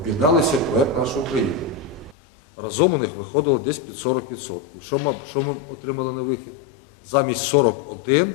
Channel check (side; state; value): right; drops out; at 2.1 s